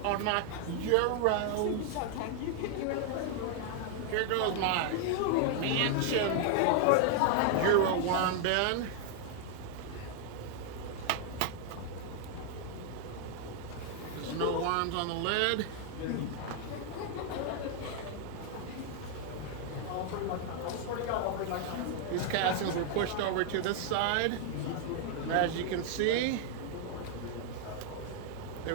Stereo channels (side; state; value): both; different; correlation 0.00